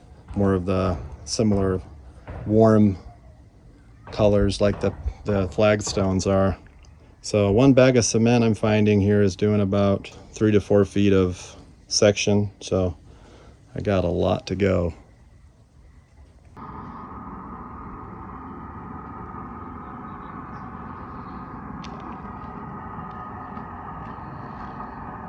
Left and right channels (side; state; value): both; identical; correlation 1.00